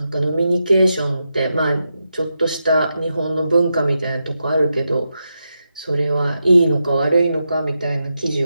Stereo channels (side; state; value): both; inverted; correlation -0.87